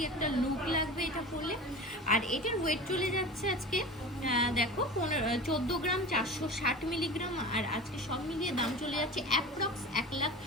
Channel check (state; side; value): normal; both; correlation 0.33